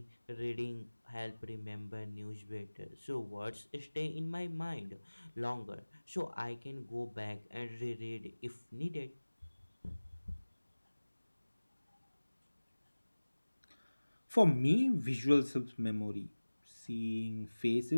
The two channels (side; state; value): both; inverted; correlation -1.00